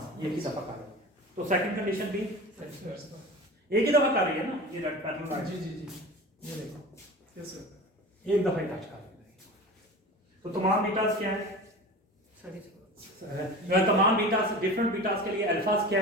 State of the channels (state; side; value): normal; both; correlation 0.34